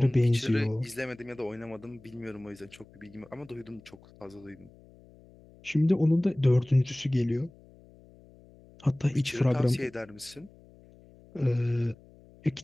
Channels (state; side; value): noise; left; hum, 25 dB below the sound